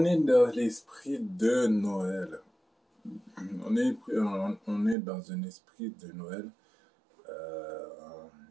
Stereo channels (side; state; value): left; drops out; at 5.0 s